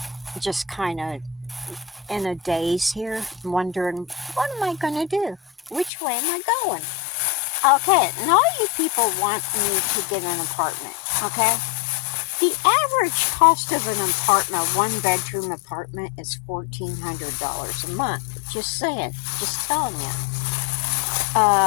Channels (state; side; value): drops out; right; at 5.9 s